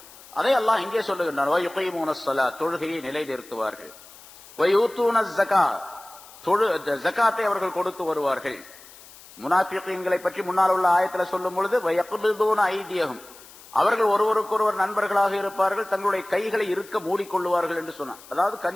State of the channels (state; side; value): noise; left; hiss, 21 dB below the sound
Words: அதை அல்லாஹ் இங்கே சொல்லுகின்றான், வயுகீமூனஸ் ஸலாத், தொழுகையை நிலைநிறுத்துவார்கள். வயூத்தூனஸ் ஸகாத், ஜகாத்தை அவர்கள் கொடுத்து வருவார்கள். முனாஃபிகீன்களை பற்றி முன்னால் உள்ள ஆயத்தில் சொல்லும் பொழுது, வயக்பிதுன ஐதியஹும், அவர்கள் ஒருவருக்கொருவர் நண்பர்களாக இருப்பார்கள், தங்களுடைய கைகளை இருக்க மூடிக்கொள்ளுவார்கள் என்று சொன்னான். அதாவது